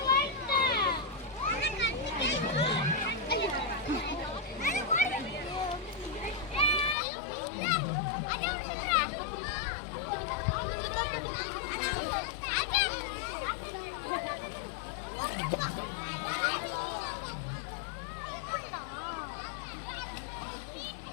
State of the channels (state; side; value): drops out; right; at 7.0 s